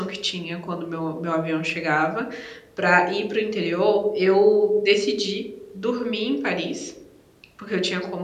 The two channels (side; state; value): both; identical; correlation 1.00